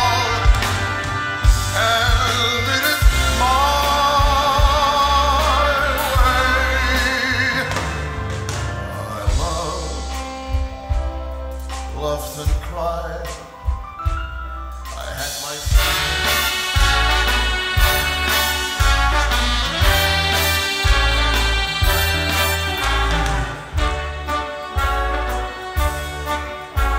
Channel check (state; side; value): identical; both; correlation 1.00